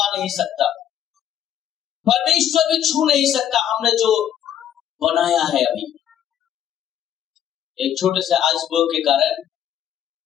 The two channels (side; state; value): right; quieter; 10.1 dB